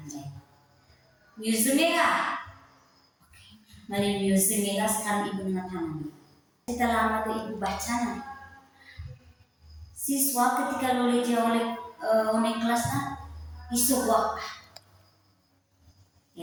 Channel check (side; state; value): both; identical; correlation 1.00